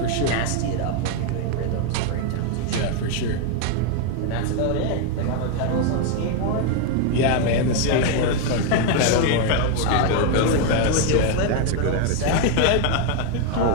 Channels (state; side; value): different; both; correlation 0.01